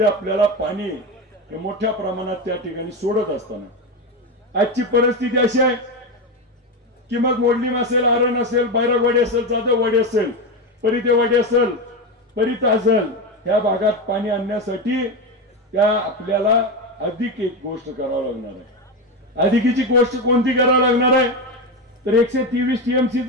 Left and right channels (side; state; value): both; normal; correlation 0.15